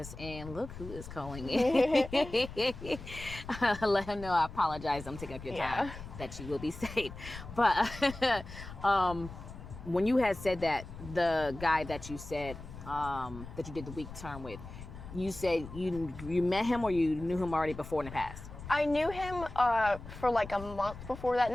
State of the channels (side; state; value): left; noise; rumble, 13 dB below the sound